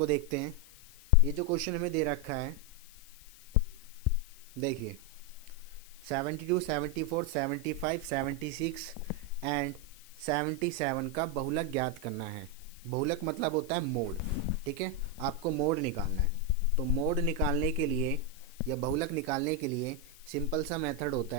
देखते हैं। ये जो क्वेश्चन हमें दे रखा है, देखिए 72, 74, 75, 76 एंड 77 का बहुलक ज्ञात करना है। बहुलक मतलब होता है मोड, ठीक है। आपको मोड निकालना है। तो मोड निकालने के लिए या बहुलक निकालने के लिए सिंपल सा मेथड होता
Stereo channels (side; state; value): left; noise; hiss, 21 dB below the sound